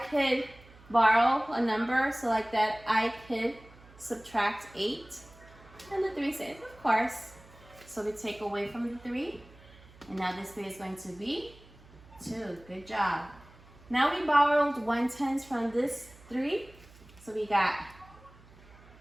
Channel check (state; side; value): noise; right; hum, 23 dB below the sound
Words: borrow a number so like that I could subtract 8? And the 3 says, of course. So we take away from the 3. And now this 3 is going to be 2. Good job. Now we borrowed 1/10 from this 3. So we got